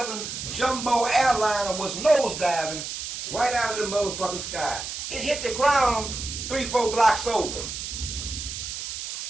jumbo airliner was nosediving right out of the motherfucking sky. It hit the ground 3-4 blocks over.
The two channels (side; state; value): right; noise; hiss, 6 dB below the sound